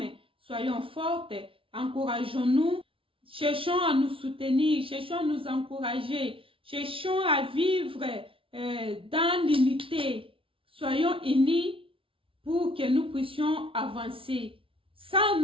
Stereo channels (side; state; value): left; late; 0.26 ms